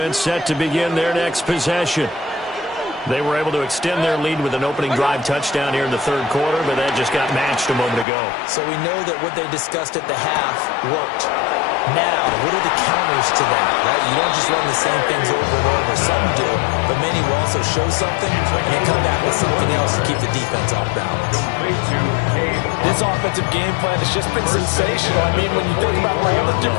set to begin their next possession. They were able to extend their lead with an opening drive touchdown here in the 3rd quarter, but that just got matched a moment ago. So we know that what they discussed at the half worked. Now, what are the counters to that, right? You don't just run the same things over and over. Some do, but many will also show something and then come back with something else to keep the defense off balance. This offensive game plan has just been sensational. I mean, when you think about all the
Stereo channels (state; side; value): drops out; right; at 8.1 s